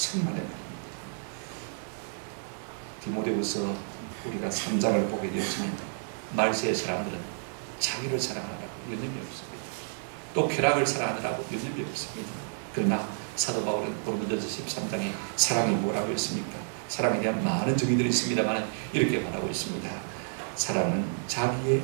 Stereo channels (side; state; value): left; silent; digital silence